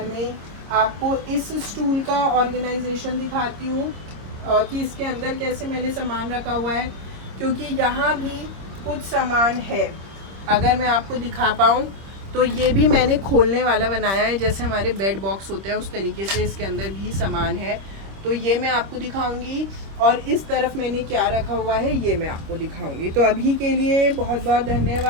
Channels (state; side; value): late; left; 26 ms